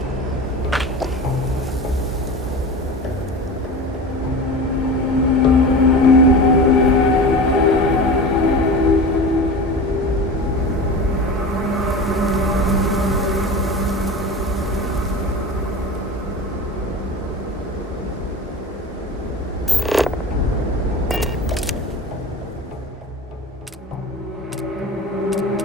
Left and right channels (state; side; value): normal; both; correlation 0.32